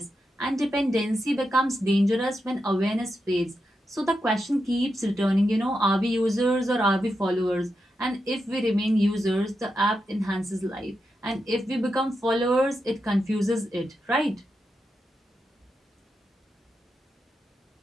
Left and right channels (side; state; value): both; normal; correlation 0.87